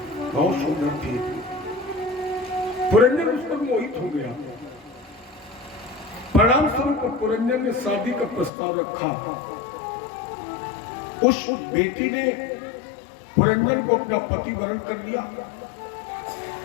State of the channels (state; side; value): drops out; right; at 8.5 s